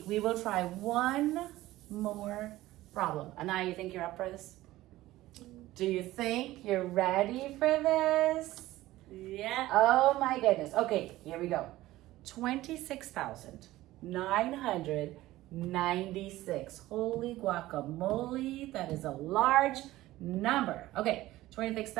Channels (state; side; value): quieter; left; 16.5 dB